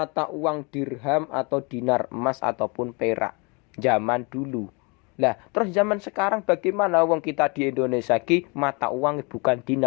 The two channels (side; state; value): right; quieter; 30.6 dB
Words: uang dirham atau dinar, emas ataupun perak. Zaman dulu. Lah, terus zaman sekarang bagaimana wong kita di Indonesia ki mata uang bukan